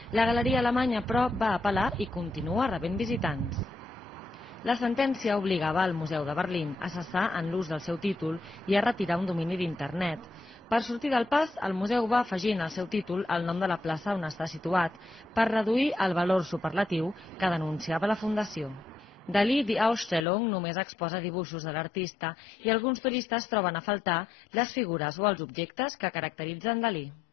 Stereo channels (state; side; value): drops out; right; at 20.2 s